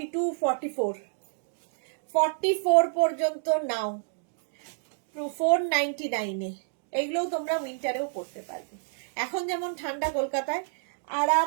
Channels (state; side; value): silent; left; digital silence